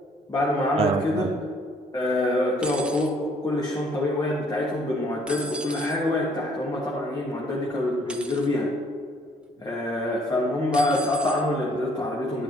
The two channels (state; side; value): normal; both; correlation 0.63